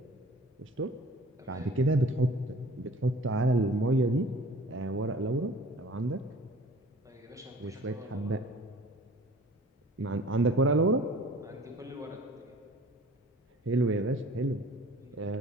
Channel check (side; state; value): both; normal; correlation 0.47